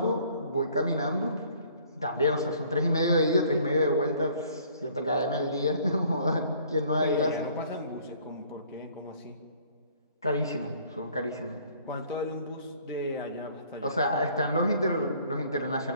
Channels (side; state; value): both; inverted; correlation -0.57